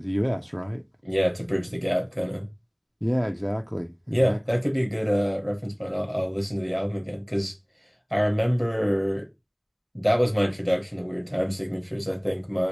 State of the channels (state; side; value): identical; both; correlation 1.00